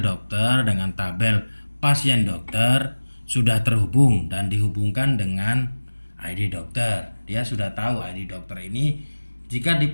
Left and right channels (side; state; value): both; inverted; correlation -1.00